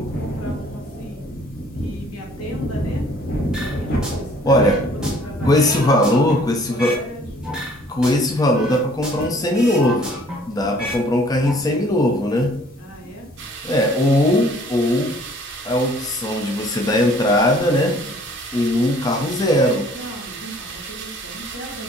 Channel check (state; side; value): normal; both; correlation 0.56